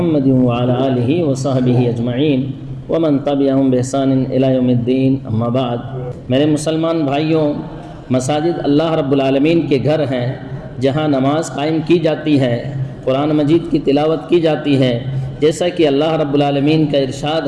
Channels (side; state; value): both; identical; correlation 1.00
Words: وعلی آلہ وصحبہ اجمعین ومن تبعہم بإحسان الی یوم الدین اما بعد۔ میرے مسلمان بھائیوں، مساجد اللہ رب العالمین کے گھر ہیں جہاں نماز قائم کی جاتی ہے، قرآن مجید کی تلاوت کی جاتی ہے، جیسا کہ اللہ رب العالمین کا